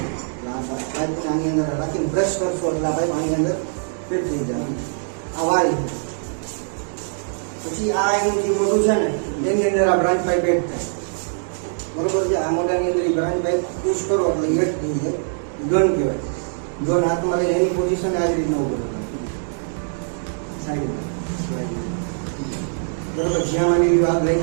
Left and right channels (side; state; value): left; silent; digital silence